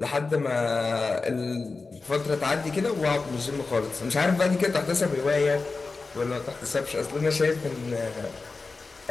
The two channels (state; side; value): quieter; right; 4.0 dB